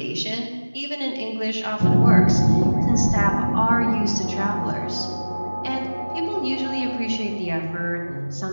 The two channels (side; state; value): both; inverted; correlation -1.00